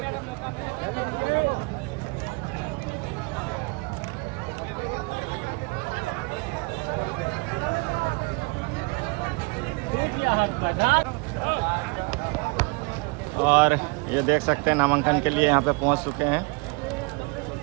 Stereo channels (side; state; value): left; quieter; 30.0 dB